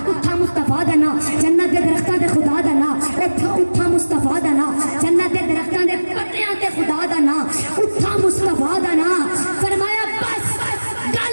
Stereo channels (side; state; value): both; inverted; correlation -1.00